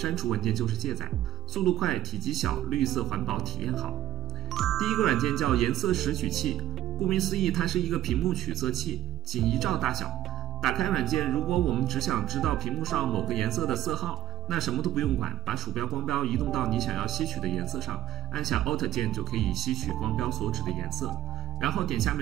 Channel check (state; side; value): quieter; left; 12.2 dB